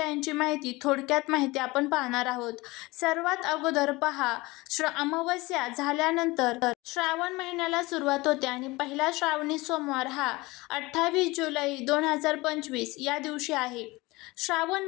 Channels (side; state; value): right; quieter; 21.9 dB